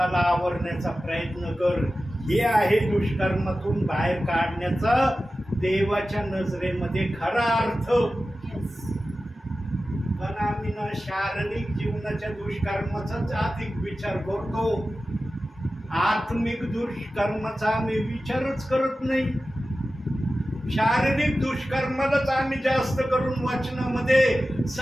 आवरण्याचा प्रयत्न कर. हे आहे दुष्कर्मातून बाहेर काढण्याचा देवाच्या नजरेमध्ये खरा अर्थ. पण आम्ही ना शारीरिक जीवनाच्या दुष्कर्माचाच अधिक विचार करतो, आत्मिक दुष्कर्माचा आम्ही विचारच करत नाही. शारीरिक दुष्कर्मालाच आम्ही जास्त करून वचनामध्ये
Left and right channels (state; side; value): normal; both; correlation 0.94